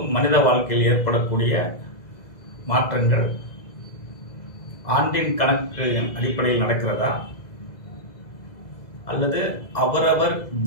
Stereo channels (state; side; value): late; right; 2.0 ms